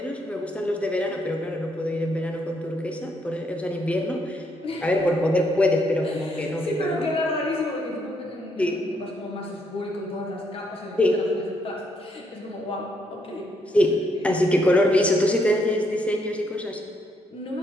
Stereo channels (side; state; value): both; normal; correlation 0.74